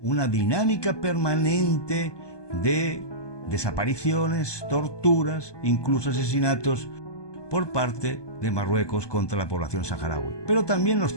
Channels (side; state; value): right; late; 1.2 ms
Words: una dinámica permanente de desapariciones, torturas, incluso asesinatos por parte de Marruecos contra la población saharaui, pero también los